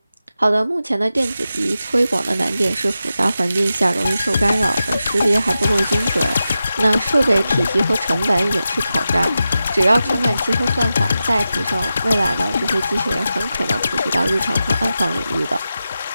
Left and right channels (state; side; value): inverted; both; correlation -0.92